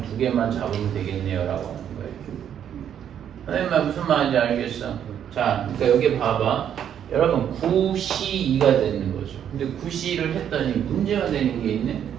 2개만 잡으면 되겠네요라고 하는 거예요. 선생님 말 무슨 말인지 알겠어? 자, 그러니까 여기 봐봐. 여러분 9C2가 되는 거죠. 근데 9C를 했더니 문제가 되는 게 있네.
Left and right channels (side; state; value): left; quieter; 9.3 dB